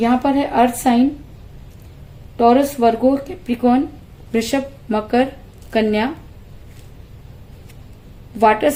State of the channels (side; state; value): both; identical; correlation 1.00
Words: पर है earth sign, Taurus, Virgo, Capricorn, Vrishabh, Makar, Kanya. Water